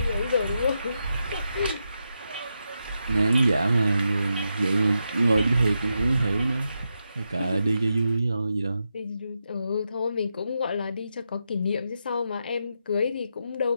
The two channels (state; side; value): inverted; both; correlation -0.86